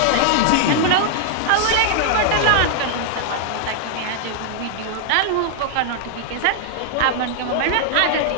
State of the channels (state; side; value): different; both; correlation -0.01